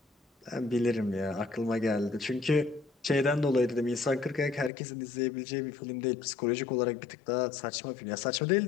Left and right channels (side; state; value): right; drops out; at 4.7 s